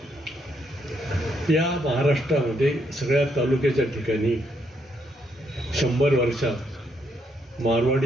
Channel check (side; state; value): both; normal; correlation 0.75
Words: या महाराष्ट्रामध्ये सगळ्या तालुक्याच्या ठिकाणी 100 वर्षात